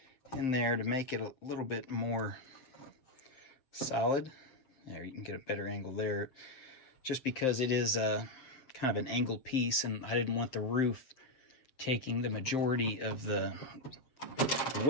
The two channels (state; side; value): late; right; 7.6 ms